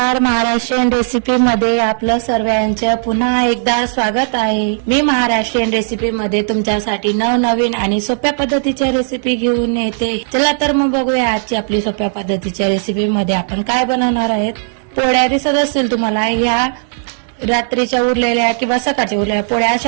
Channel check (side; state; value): left; silent; digital silence